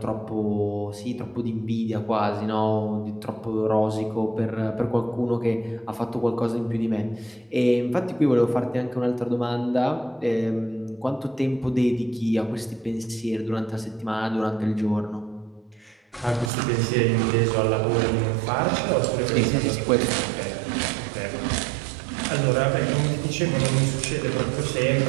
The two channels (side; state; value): left; drops out; at 16.5 s